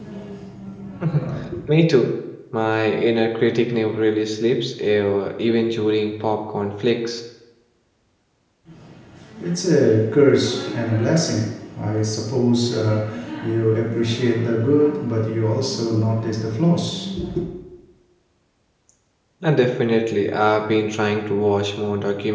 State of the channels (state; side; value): identical; both; correlation 1.00